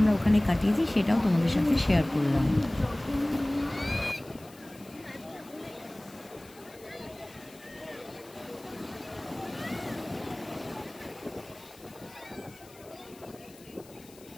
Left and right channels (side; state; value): left; noise; hiss, 23 dB below the sound